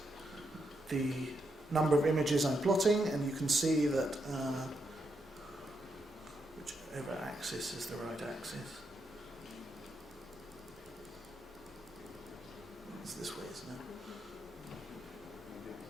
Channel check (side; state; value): both; normal; correlation 0.81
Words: the number of images I'm plotting, and you can see that whichever axis is the right axis. It's this way, isn't it?